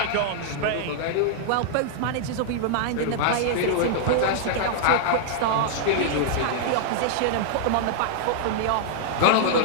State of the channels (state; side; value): different; both; correlation -0.01